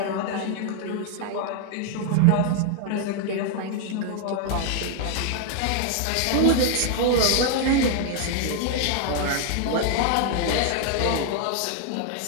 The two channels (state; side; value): different; both; correlation 0.00